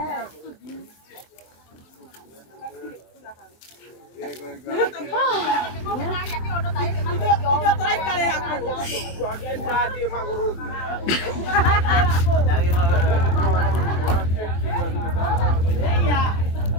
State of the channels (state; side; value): late; right; 24 ms